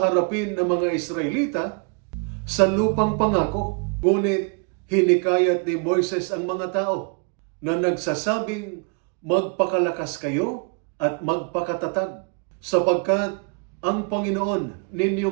ng mga Israelita sa lupang pangako. Ngunit hinikayat ni Moises ang mga tao na nagsasabing magpakalakas kayo at magpakatatag sapagkat ang Panginoon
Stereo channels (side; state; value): left; quieter; 37.1 dB